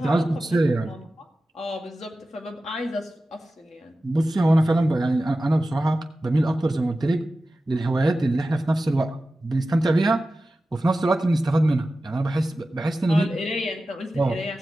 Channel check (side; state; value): both; normal; correlation 0.94